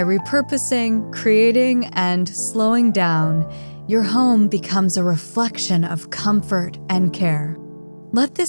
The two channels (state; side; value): inverted; both; correlation -1.00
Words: repurposing, creating, and slowing down, your home becomes a reflection of comfort and care. Let this